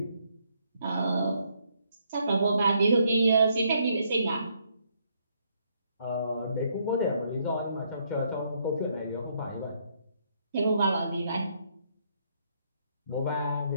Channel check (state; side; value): inverted; both; correlation -0.71